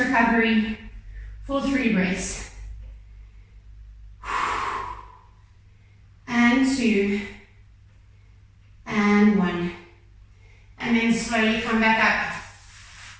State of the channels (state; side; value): identical; both; correlation 1.00